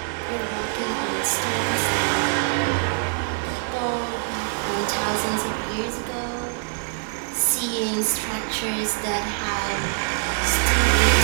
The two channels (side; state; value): left; silent; 63 dB below the other